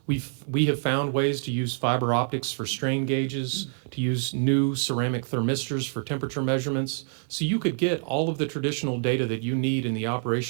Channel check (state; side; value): silent; left; digital silence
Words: We have found ways to use fiber optics for strain gauges, to use new ceramic thermistors for temperature measurements. So you could get all of the traditional data that you need in the